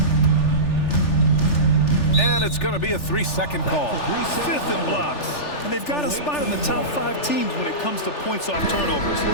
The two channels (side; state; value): right; late; 3.4 ms